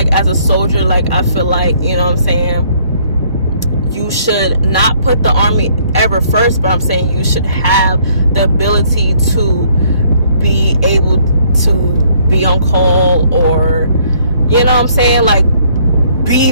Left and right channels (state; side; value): inverted; both; correlation -0.64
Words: as a soldier, like, I feel like, you know what I'm saying, you should not put the Army ever first, but I'm saying you should have the ability to be able to be on call, or, you know what I'm saying, like, be